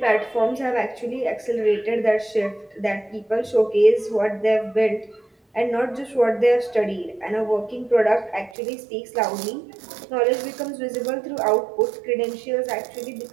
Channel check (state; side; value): drops out; left; at 8.6 s